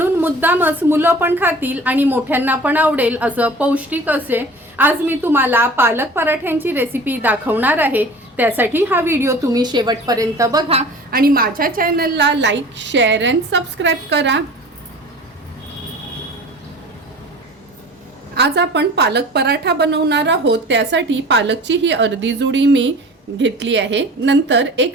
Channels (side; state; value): both; normal; correlation 0.41